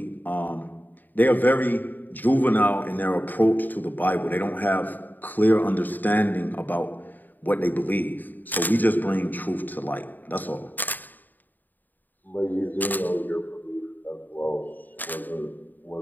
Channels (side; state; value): right; late; 0.088 ms